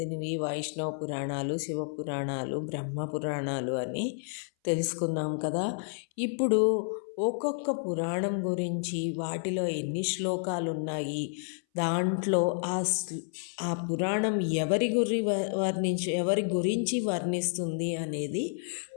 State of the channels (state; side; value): silent; right; 58 dB below the other